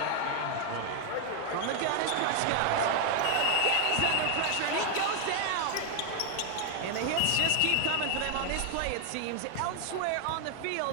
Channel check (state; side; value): different; both; correlation 0.00